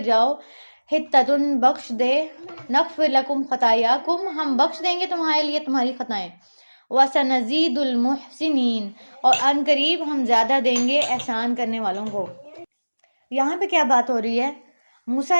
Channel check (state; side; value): inverted; both; correlation -1.00